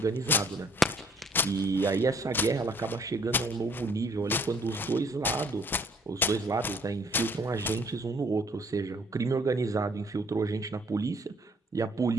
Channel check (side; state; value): both; normal; correlation 0.61